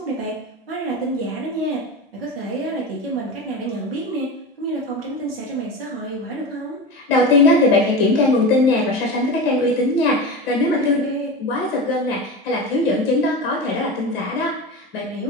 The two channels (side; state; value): both; normal; correlation 0.25